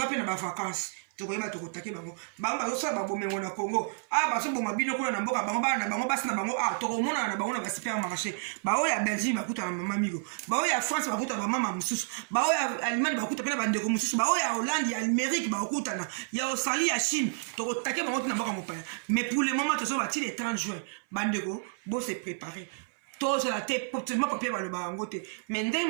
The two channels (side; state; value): left; silent; 56 dB below the other